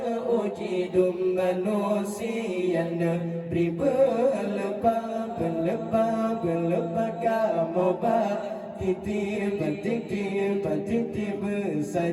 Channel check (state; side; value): identical; both; correlation 1.00